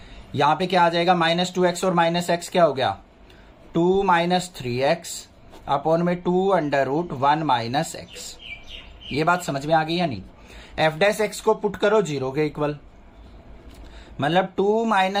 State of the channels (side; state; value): both; identical; correlation 1.00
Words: यहाँ पे क्या आ जाएगा -2x और माइनस एक्स क्या हो गया 2 माइनस 3x अपॉन में 2 अंडर रूट 1 माइनस एक्स। ये बात समझ में आ गई या नहीं। f डैश एक्स को पुट करो 0 के इक्वल, मतलब 2